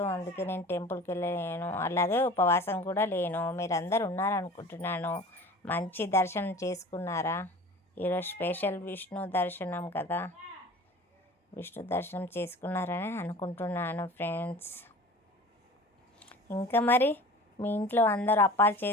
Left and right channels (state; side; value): normal; both; correlation 0.40